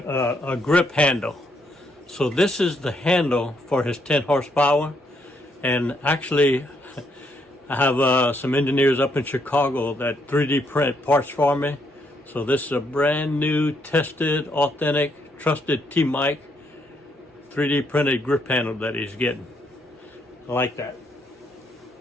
grip handle. So this is the handle for his 10 horsepower. And actually, I have some engineers up in Chicago that 3D print parts for me So this is a brand new, tested, authentic, trusted T-Mike 3D printed grip handle that he's getting. I like that.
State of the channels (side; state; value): both; normal; correlation 0.74